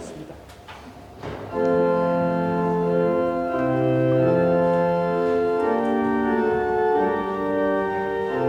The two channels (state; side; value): identical; both; correlation 1.00